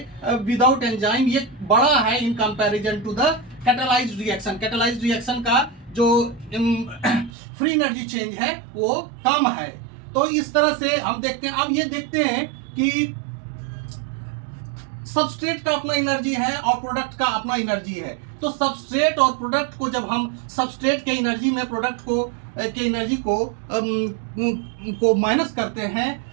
विदाउट एंजाइम ये बड़ा है in comparison to the catalysed reaction. Catalysed reaction का जो फ्री एनर्जी चेंज है वो कम है। तो इस तरह से हम देखते हैं। अब ये देखते हैं कि सबस्ट्रेट का अपना एनर्जी है और प्रोडक्ट का अपना एनर्जी है। तो सबस्ट्रेट और प्रोडक्ट को जब हम सबस्ट्रेट के एनर्जी में प्रोडक्ट के एनर्जी को माइनस करते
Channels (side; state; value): left; drops out; at 7.3 s